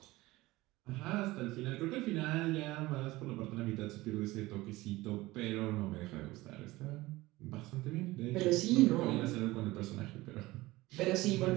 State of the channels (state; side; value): quieter; left; 19.3 dB